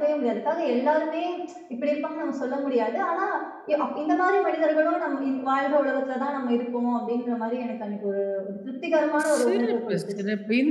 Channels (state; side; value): identical; both; correlation 1.00